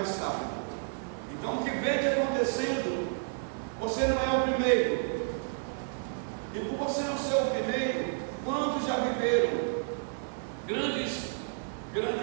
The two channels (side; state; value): left; silent; 57 dB below the other